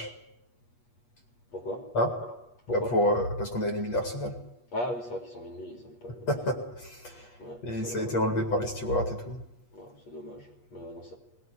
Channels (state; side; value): late; right; 8.3 ms